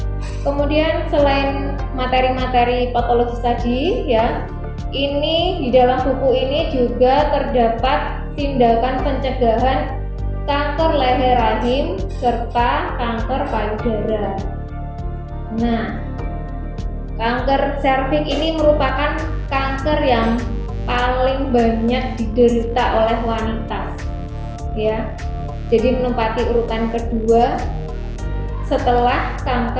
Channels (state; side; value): identical; both; correlation 1.00